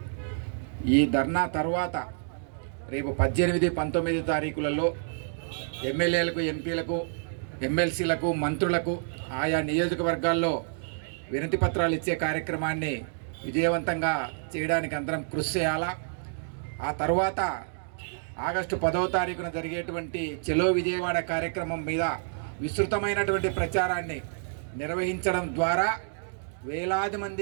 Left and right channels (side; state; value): left; silent; digital silence